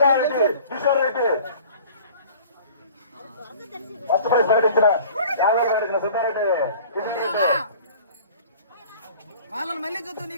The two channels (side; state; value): both; inverted; correlation -0.46